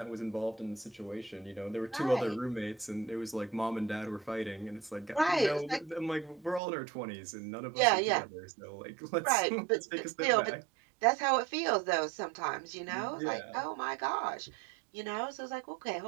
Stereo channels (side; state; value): left; drops out; at 6.6 s